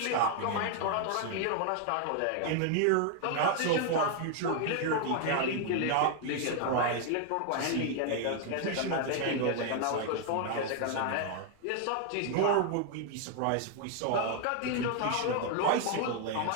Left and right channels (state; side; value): different; both; correlation 0.00